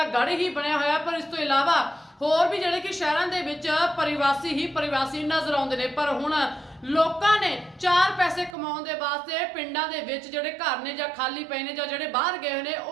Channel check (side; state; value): left; drops out; at 8.6 s